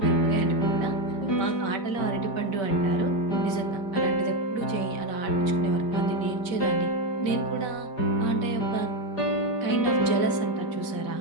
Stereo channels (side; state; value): right; late; 5.2 ms